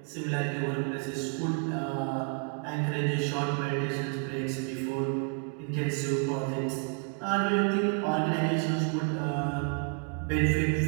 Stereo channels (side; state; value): left; quieter; 38.4 dB